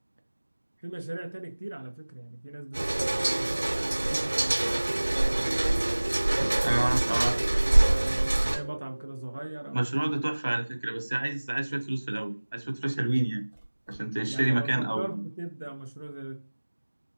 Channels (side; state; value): both; inverted; correlation -1.00